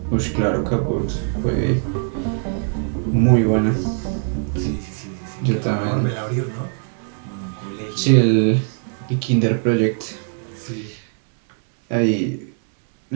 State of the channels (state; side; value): silent; left; 57 dB below the other